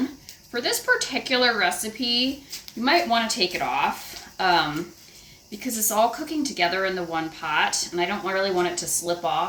For this particular recipe, you might want to take it off because it's all cooking together in the one pot, and I don't really want it to slip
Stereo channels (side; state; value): both; identical; correlation 1.00